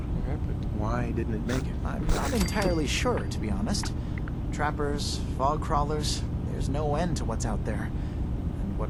what happened? Why didn't it make it? I'm not entirely sure, to be honest. Trappers, fog crawlers, there's no end to what's out there, and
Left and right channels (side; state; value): both; identical; correlation 1.00